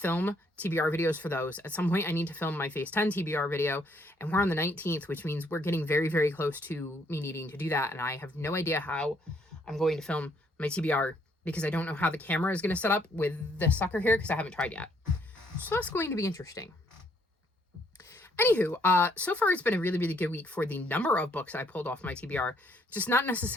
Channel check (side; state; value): both; normal; correlation 0.68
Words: TBR videos for those. At some point, I need to film my Phase 10 TBR video, and we're on the 19th, which means we're getting very, very close to me needing to do that. And I have no idea how I'm going to film my TBR, because I don't know how the camera is going to set up with the sucker here, because I haven't tried yet. So that's going to be interesting. Anywho, so far it's been a really, really good week for the number of books I pulled off my TBR, just not